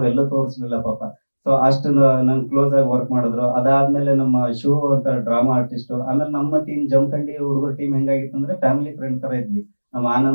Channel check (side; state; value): both; inverted; correlation -1.00